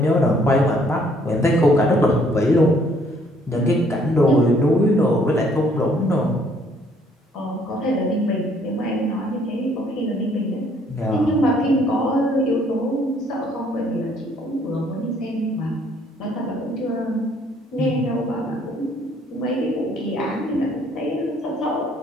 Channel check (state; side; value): normal; both; correlation 0.63